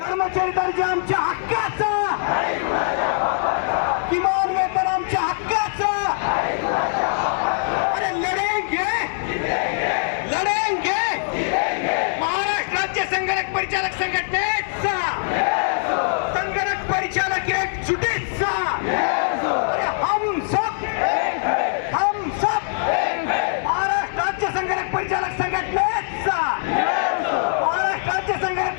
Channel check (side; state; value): right; silent; digital silence